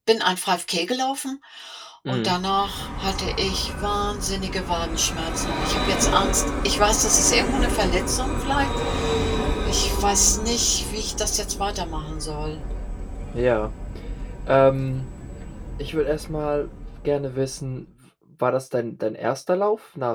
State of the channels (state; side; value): identical; both; correlation 1.00